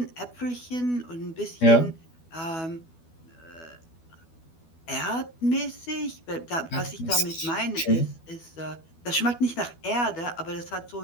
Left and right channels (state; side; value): late; right; 12 ms